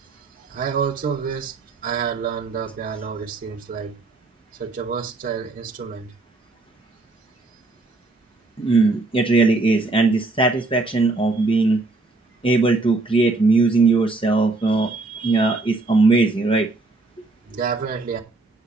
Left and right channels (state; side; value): quieter; left; 3.4 dB